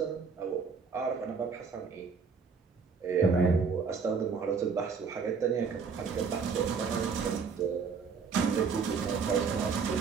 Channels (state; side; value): quieter; left; 5.5 dB